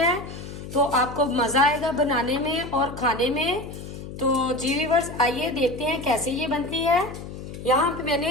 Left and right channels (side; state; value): left; noise; hum, 11 dB below the sound